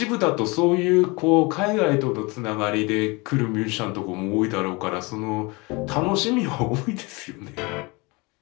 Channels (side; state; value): right; quieter; 26.4 dB